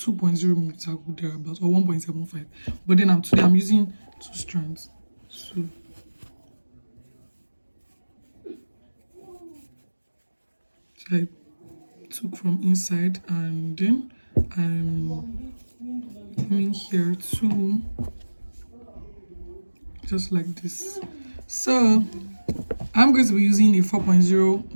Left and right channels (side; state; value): both; inverted; correlation -1.00